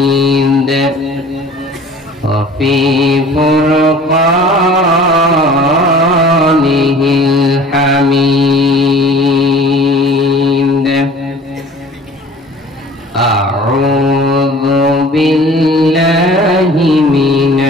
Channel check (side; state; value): both; normal; correlation 0.46